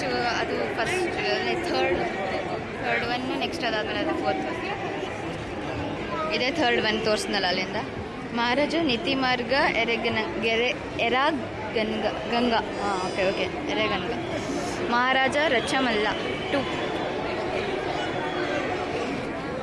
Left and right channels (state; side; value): identical; both; correlation 1.00